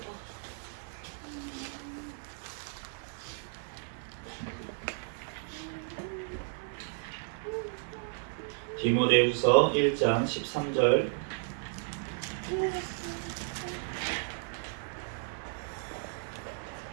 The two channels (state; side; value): silent; left; 55 dB below the other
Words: 디모데후서 1장 13절,